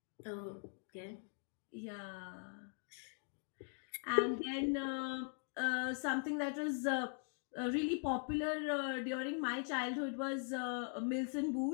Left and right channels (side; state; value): right; silent; 50 dB below the other